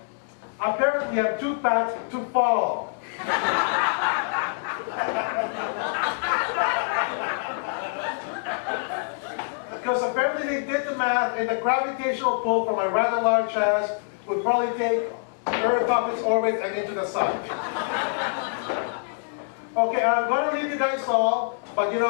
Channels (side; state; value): right; silent; digital silence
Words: apparently I'm too fat to fall. Because apparently they did the math, and the gravitational pull from a rather large ass would probably take Earth off its orbit and into the sun. Okay, I'm going to leave you guys all, but you